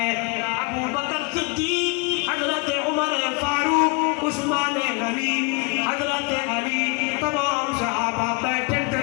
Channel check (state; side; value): quieter; right; 29.8 dB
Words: ابو بکر صدیق حضرت عمر فاروق عثمان غنی حضرت علی تمام صحابہ بیٹھے